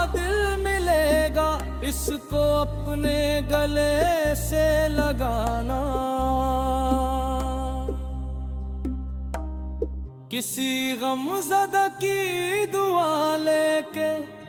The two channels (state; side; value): identical; both; correlation 1.00